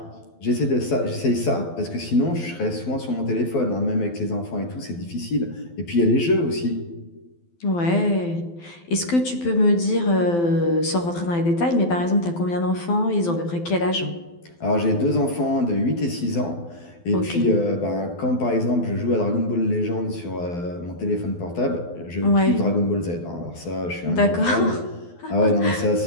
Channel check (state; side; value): late; right; 12 ms